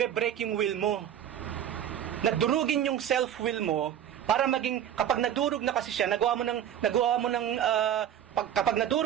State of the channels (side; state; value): left; quieter; 10.2 dB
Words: yung will mo. Nadurugin yung self-will mo para maging, kapag nadurog na kasi siya, kapag